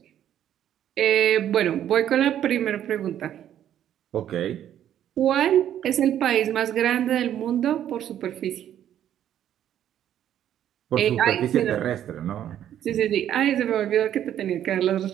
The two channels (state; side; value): quieter; left; 10.7 dB